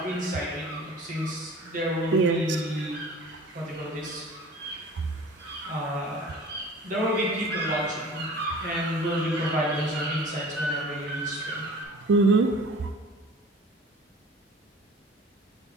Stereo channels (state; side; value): normal; both; correlation 0.43